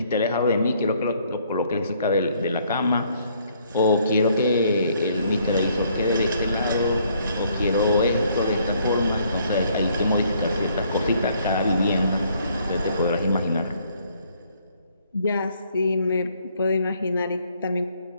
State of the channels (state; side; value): inverted; both; correlation -0.66